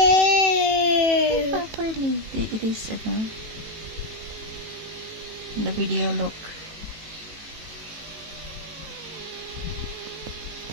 Properly. It is, the video look.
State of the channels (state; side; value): late; left; 18 ms